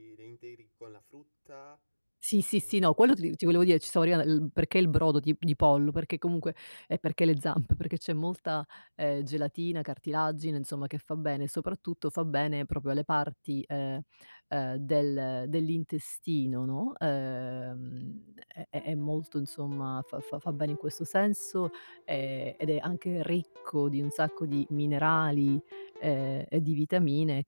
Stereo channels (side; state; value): both; inverted; correlation -1.00